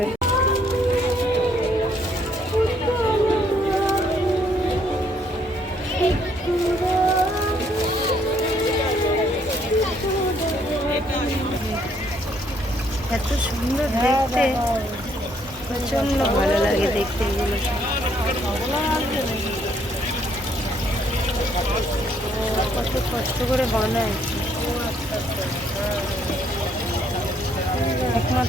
এত সুন্দর দেখতে, প্রচন্ড ভালো লাগে দেখতে এগুলো। কত কষ্ট করে বানায়,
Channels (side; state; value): both; normal; correlation 0.68